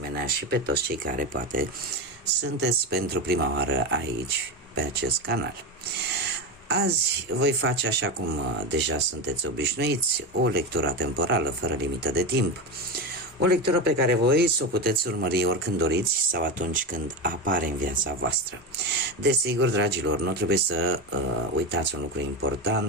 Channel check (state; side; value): normal; both; correlation 0.18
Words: și pe toți cei care poate sunteți pentru prima oară aici, pe acest canal. Azi voi face, așa cum deja sunteți obișnuiți, o lectură temporală fără limită de timp. O lectură pe care voi să o puteți urmări oricând doriți sau atunci când apare în viața voastră. Desigur, dragilor, nu trebuie să uitați un lucru